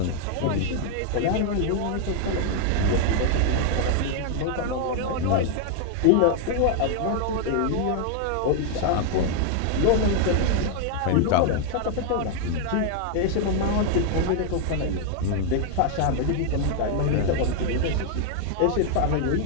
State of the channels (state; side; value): different; both; correlation 0.00